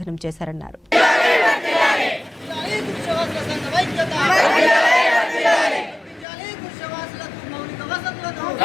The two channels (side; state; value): right; drops out; at 6.2 s